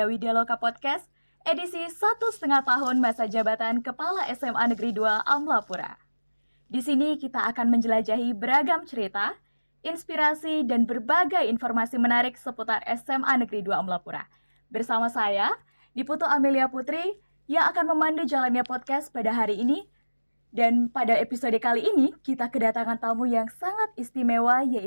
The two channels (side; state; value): both; inverted; correlation -1.00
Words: Widyaloka Podcast, edisi 1,5 tahun masa jabatan Kepala SMA Negeri 2 Amlapura. Di sini kita akan menjelajahi beragam cerita, inspirasi, dan berbagai informasi menarik seputar SMA Negeri 2 Amlapura. Bersama saya, Diputu Amelia Putri, yang akan memandu jalannya podcast pada hari ini. Dan pada episode kali ini, kita kedatangan tamu yang sangat istimewa,